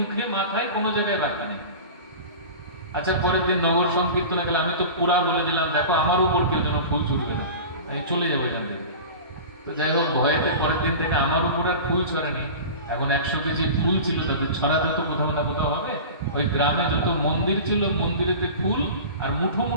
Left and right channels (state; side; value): inverted; both; correlation -0.33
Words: মাথায়, কোনো জায়গায় বাকি নেই। আচ্ছা, পরের দিন নগর সংকীর্তনে গেলে আমি তো পুরা বলে দিলাম, দেখো আমার উপর কেউ যেন ফুল ছুটবে না, আমি চলে যাবো এখান থেকে। তো যাই হোক, ভয়েতে পরের দিন থেকে আমার উপর আর ফুল ছড়ানি। এখন 100 কেজি ফুল ছিল, তাদের ছড়াতে তো কোথাও না কোথাও হবে। ওই গ্রামে যত মন্দির ছিল, মন্দিরেতে ফুল আর মুঠো